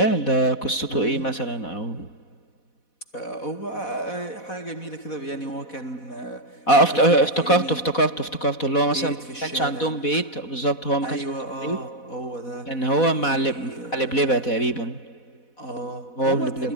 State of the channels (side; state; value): right; late; 4.1 ms